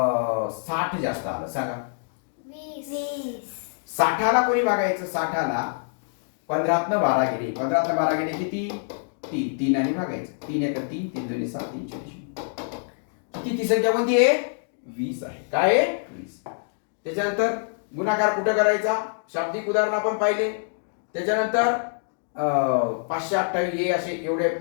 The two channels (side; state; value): right; silent; digital silence